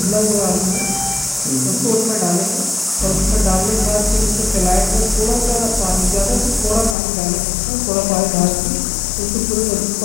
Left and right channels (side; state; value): right; drops out; at 7.0 s